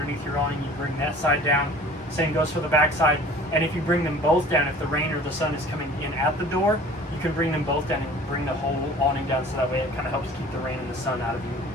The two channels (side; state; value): both; normal; correlation 0.46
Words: your awning, you bring that side down. Same goes for the back side. And if you bring them both down, if the rain or the sun is coming in at the door, you can bring them both down and bring the whole awning down, so that way it kind of helps keep the rain and the sun out